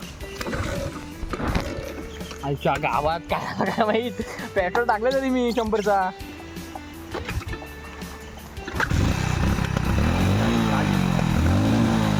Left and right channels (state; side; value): identical; both; correlation 1.00